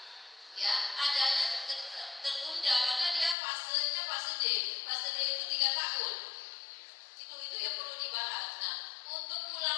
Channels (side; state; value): right; drops out; at 3.4 s